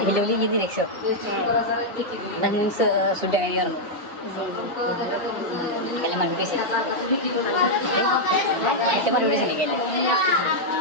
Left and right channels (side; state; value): both; normal; correlation -0.03